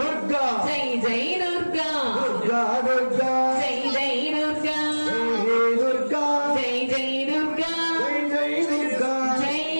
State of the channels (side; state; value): both; inverted; correlation -1.00